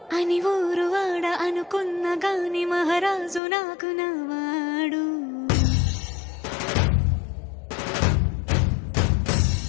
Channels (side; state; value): right; drops out; at 3.4 s